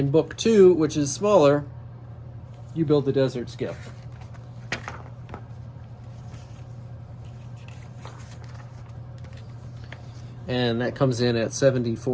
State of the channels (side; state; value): both; identical; correlation 1.00